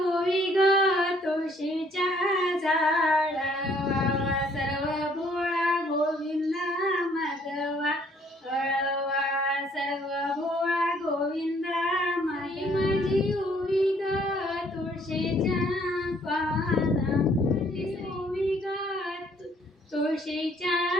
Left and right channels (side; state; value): both; normal; correlation 0.63